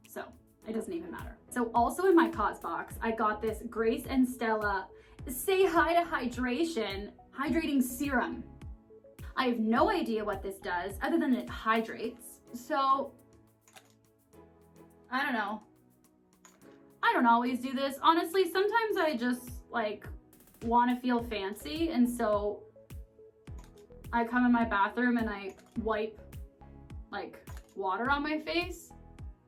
so it doesn't even matter. So also in my Cos box, I got this Grace and Stella Say Hi to Hydration Hydrating Serum. I have no idea what this does other than it hydrates. So, I don't know. I don't always do this. Honestly, sometimes I just like want to feel fancy and so I come in my bathroom and I wipe like water on my face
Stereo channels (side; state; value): both; identical; correlation 1.00